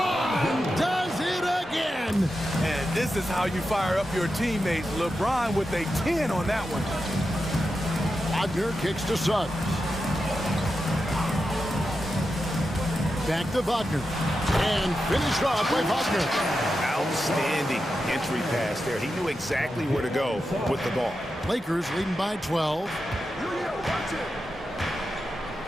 does it again. And this is how you fire up your teammates. LeBron with a 10 on that one. Wagner kicks to Suggs. Back to Wagner. And finished off by Wagner. Outstanding entry pass there. He knew exactly where to go with the ball. Lakers leading by 12.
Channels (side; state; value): both; normal; correlation 0.89